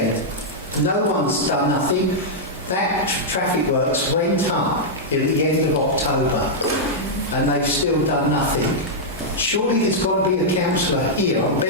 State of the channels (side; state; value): both; normal; correlation -0.06